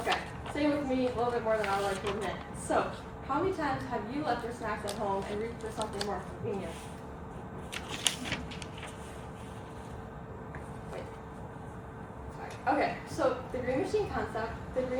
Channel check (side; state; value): both; identical; correlation 1.00